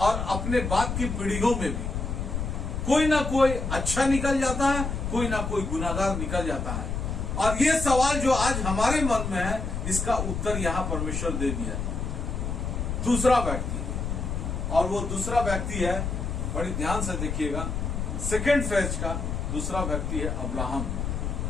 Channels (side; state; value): left; noise; rumble, 3 dB below the sound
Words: अपने बाद की पीढ़ियों में भी कोई ना कोई अच्छा निकल जाता है, कोई ना कोई गुनाहगार निकल जाता है। और ये सवाल जो आज हमारे मन में है, इसका उत्तर यहां परमेश्वर दे दिया। दूसरा व्यक्ति, और वो दूसरा व्यक्ति है, बड़ी ध्यान से देखिएगा, सेकेंड फेज का दूसरा व्यक्ति है अब्राहम।